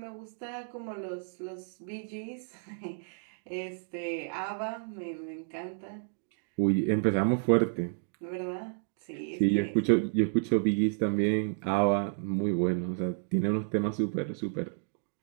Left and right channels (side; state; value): left; silent; digital silence